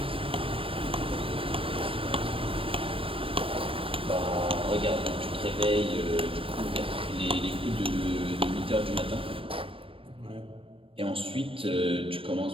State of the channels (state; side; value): late; left; 0.26 ms